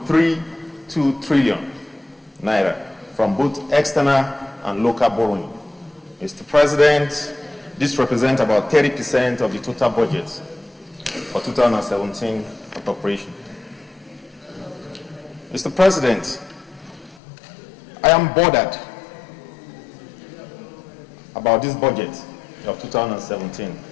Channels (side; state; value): right; drops out; at 17.2 s